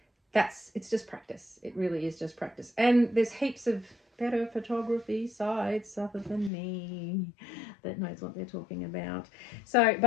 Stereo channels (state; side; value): drops out; right; at 6.5 s